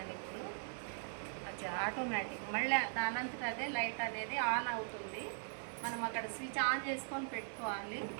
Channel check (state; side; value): silent; left; 51 dB below the other